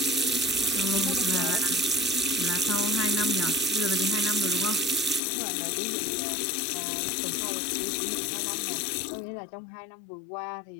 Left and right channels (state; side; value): drops out; right; at 5.2 s